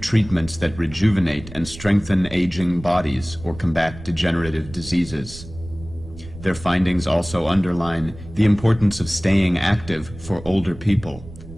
that rejuvenate and strengthen aging bodies or combat degenerative diseases. Their findings also underline the importance of staying active for older people,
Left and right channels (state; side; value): noise; right; rumble, 15 dB below the sound